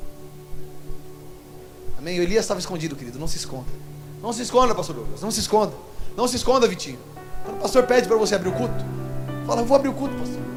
Amém? O Elias estava escondido, querido, não se esconda. Não se esconda, pastor Douglas, não se esconda. Não se esconda, Vitinho. Quando o pastor pede para você abrir o culto, fala: eu vou abrir o culto, pastor.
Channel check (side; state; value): both; identical; correlation 1.00